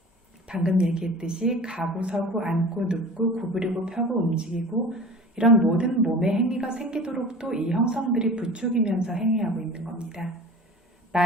방금 얘기했듯이 가고 서고 앉고 눕고 구부리고 펴고 움직이고 이런 모든 몸의 행위가 생기도록 또 이 형성들이 부추기면서 행위하고 있는 겁니다.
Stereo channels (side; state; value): both; normal; correlation 0.38